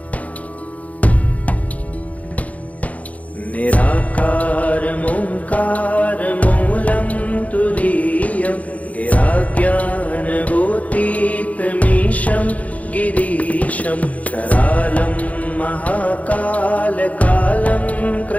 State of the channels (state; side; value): late; right; 0.069 ms